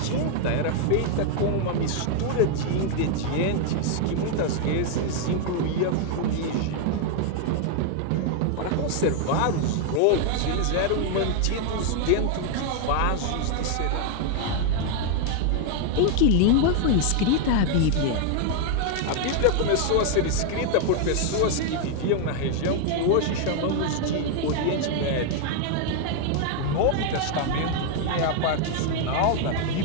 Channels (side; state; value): both; different; correlation 0.00